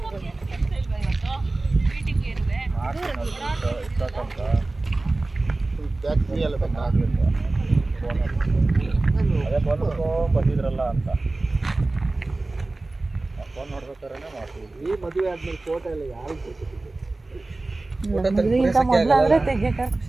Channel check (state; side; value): quieter; left; 3.1 dB